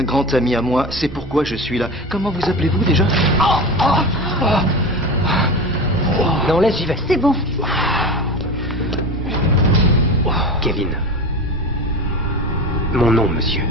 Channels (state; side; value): normal; both; correlation 0.27